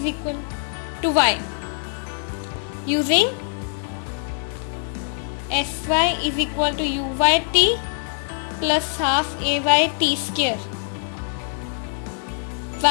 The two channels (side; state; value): right; silent; 61 dB below the other